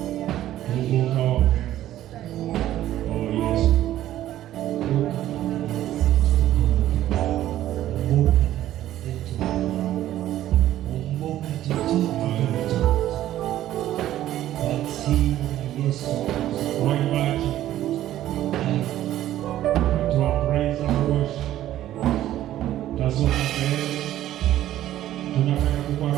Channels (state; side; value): quieter; left; 13.2 dB